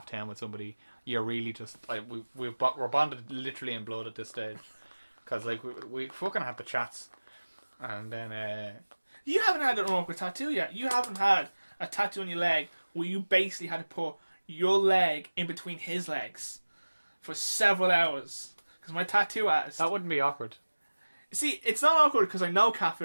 with somebody, you're really just like we're bonded literally in blood at this stage, because like we fucking have the chats, and then You haven't had an awkward tattoo yet. You haven't had a tattoo on your leg where you basically had to put your leg in between his legs for several hours. Because my tattoo artist... That wouldn't be awkward. See, it's not awkward because I know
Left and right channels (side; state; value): both; inverted; correlation -1.00